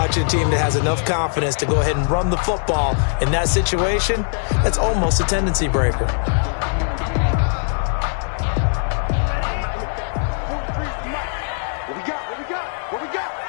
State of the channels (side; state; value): right; silent; digital silence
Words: a team that has enough confidence to go ahead and run the football. In that situation, that's almost a tendency breaker. What we got?